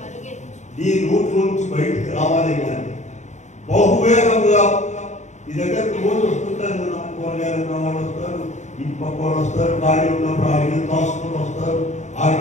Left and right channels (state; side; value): late; right; 0.34 ms